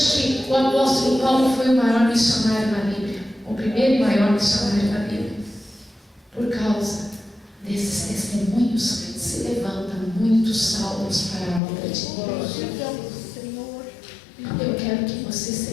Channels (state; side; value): drops out; right; at 11.6 s